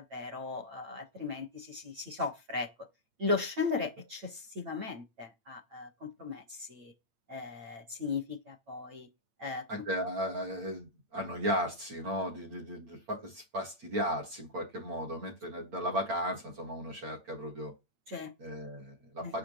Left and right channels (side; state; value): left; late; 8.8 ms